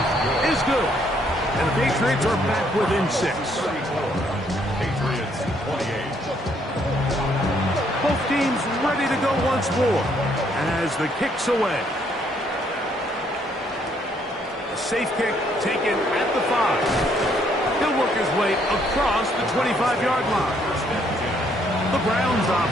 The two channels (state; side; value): normal; both; correlation 0.69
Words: is good. And the Patriots are back within 6. Patriots 28. Both teams ready to go once more as the kick's away. A safe kick taken at the 5. He'll work his way across the 25-yard line. The Browns